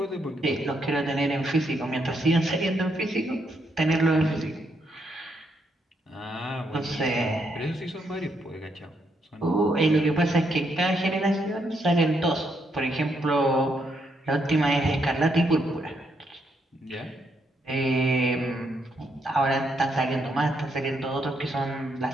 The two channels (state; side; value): normal; both; correlation 0.77